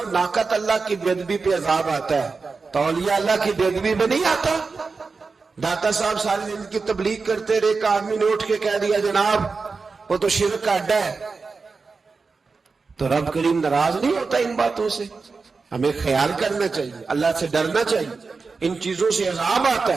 ناقت اللہ کی بے ادبی پہ عذاب آتا ہے تو اولیاء اللہ کی بے ادبی پہ نہیں آتا۔ داتا صاحب ساری دن کی تبلیغ کرتے رہے، ایک آدمی نے اٹھ کے کہہ دیا جناب وہ تو شرک کا اڈا ہے، تو رب کریم ناراض نہیں ہوتا ان باتوں سے؟ ہمیں خیال کرنا چاہیے، اللہ سے ڈرنا چاہیے، ان چیزوں سے عذاب آتا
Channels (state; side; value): quieter; left; 4.4 dB